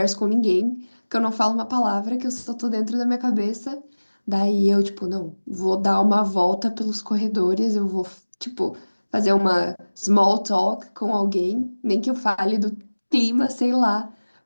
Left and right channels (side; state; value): both; inverted; correlation -1.00